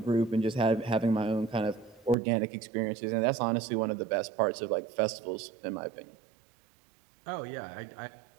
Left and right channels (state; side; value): drops out; left; at 2.1 s